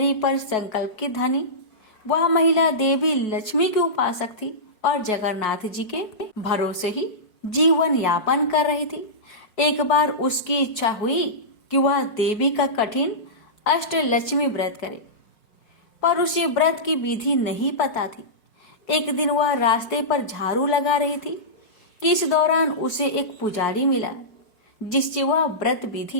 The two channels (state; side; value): late; right; 5.5 ms